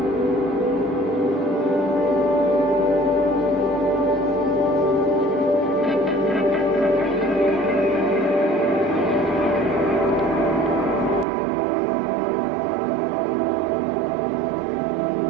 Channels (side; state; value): left; drops out; at 11.2 s